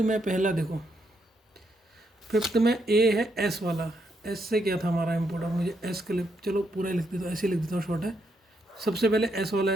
पहला देखो, 5th में ए है एस वाला, एस से क्या था हमारा इम्पोर्ट, और मुझे एस के लिए चलो पूरा लिख देता हूँ, ऐसे लिख देता हूँ शॉर्ट है। सबसे पहले एस वाला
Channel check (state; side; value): normal; both; correlation 0.77